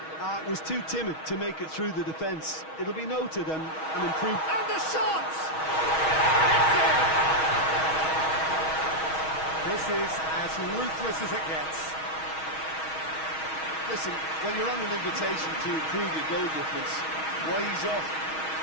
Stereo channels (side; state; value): right; late; 6.3 ms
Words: Was too timid to make it through the defence. It'll be noted and improved. And the shot! This is as ruthless as it gets. Listen, when you're on an invitation to improve your goal difference, why ease off?